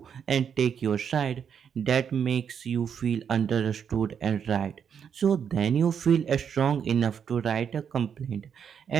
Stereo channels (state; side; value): quieter; left; 7.6 dB